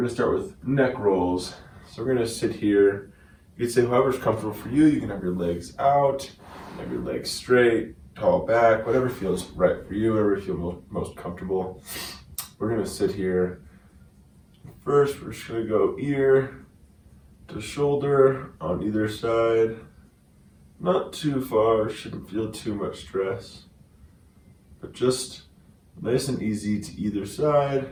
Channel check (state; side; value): identical; both; correlation 1.00